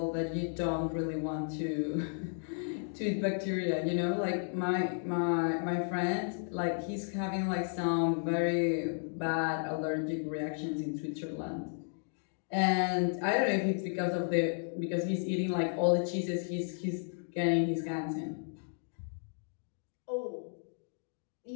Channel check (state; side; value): silent; right; digital silence